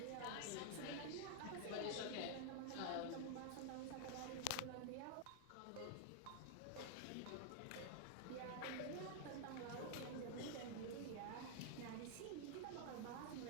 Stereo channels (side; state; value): both; different; correlation 0.00